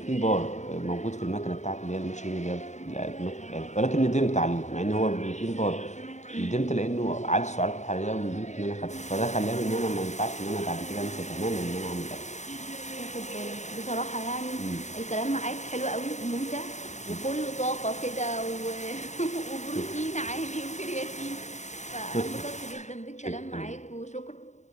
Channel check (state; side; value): late; right; 0.34 ms